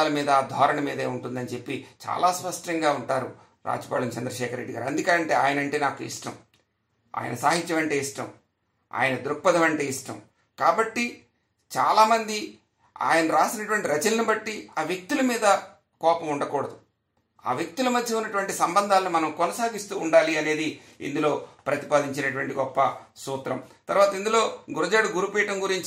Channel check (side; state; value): both; identical; correlation 1.00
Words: మీద ధోరణి మీదే ఉంటుందని చెప్పి చాలా స్పష్టంగా ఉంటారు రాచపాళెం చంద్రశేఖర్ రెడ్డి గారు. అందుకంటే ఆయన అంటే నాకు ఇష్టం, ఆయన సాహిత్యం అంటే ఇష్టం, ఆయన దృక్పథం అంటే ఇష్టం. కాబట్టి చాలామంది ఆయన రాసినటువంటి రచనలను బట్టి ఆ వ్యక్తుల మీద కోపం ఉండకూడదు, ఆ వ్యక్తుల మధ్య ఉన్నటువంటి సంబంధాలను మనం కొనసాగిస్తూ ఉండాలి అనేది ఇందులో ప్రతిపాదించినటువంటి గొప్ప సూత్రం. తర్వాత ఇందులో గురజాడ గురుపీఠం